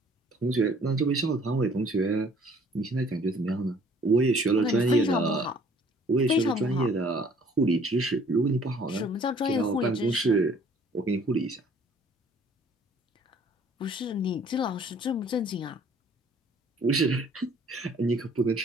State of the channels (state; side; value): normal; both; correlation 0.57